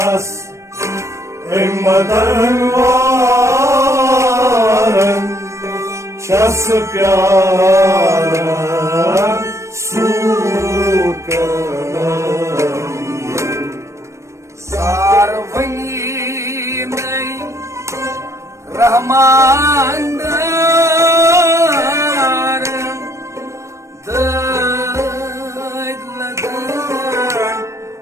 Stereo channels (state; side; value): late; left; 0.14 ms